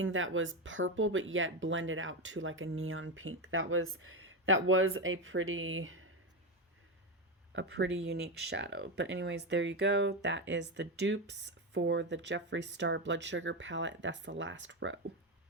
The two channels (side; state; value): both; normal; correlation 0.12